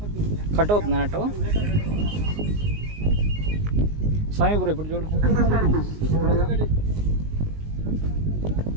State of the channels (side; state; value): left; late; 19 ms